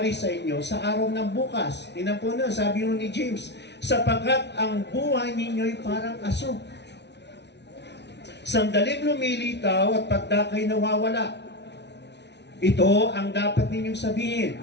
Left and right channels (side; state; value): right; late; 0.50 ms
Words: sa inyo sa araw ng bukas. Tinan po na, sabi ni James, sapagkat ang buhay ninyo'y parang aso. Sandaling lumilitaw at pagdakay nawawala. Ito ang dapat ninyong sabihin.